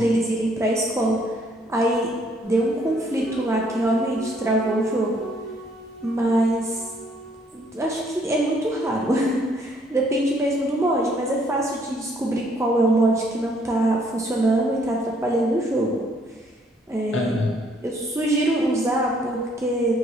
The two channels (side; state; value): both; normal; correlation 0.66